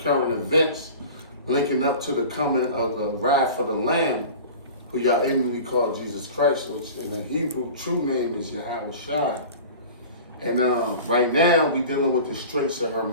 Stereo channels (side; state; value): both; inverted; correlation -0.38